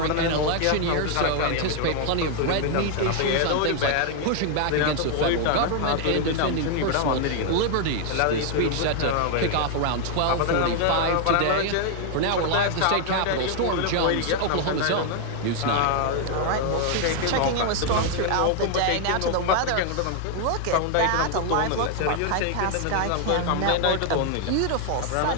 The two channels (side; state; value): both; different; correlation 0.00